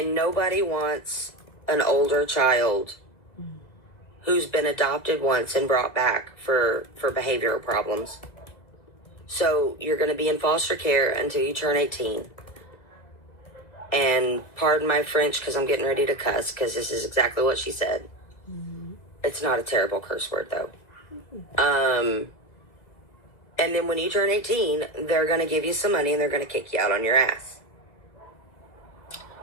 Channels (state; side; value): late; right; 2.0 ms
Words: nobody wants an older child who's been adopted once and brought back for behavioral problems. So you're going to be in foster care until you turn 18. And pardon my French because I'm getting ready to cuss, because this is exactly what she said. Mm-hmm. It's not a terrible curse word, though. Mm-hmm. And then when you turn 18, they're going to give you some money and they're going to kick you out on your ass.